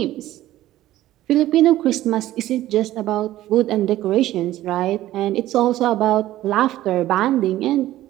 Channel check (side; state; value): left; quieter; 14.7 dB